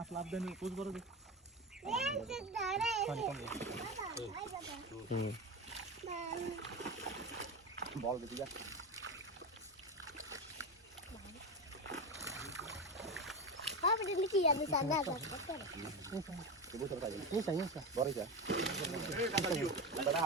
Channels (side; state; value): both; normal; correlation 0.19